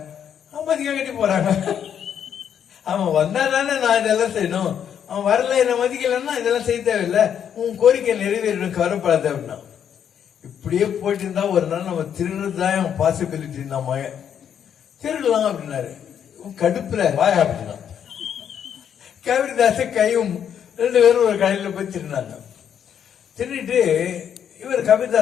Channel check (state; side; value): quieter; right; 8.7 dB